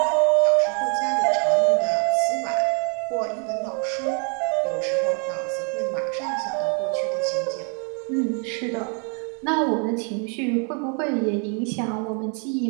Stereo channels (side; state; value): left; quieter; 38.6 dB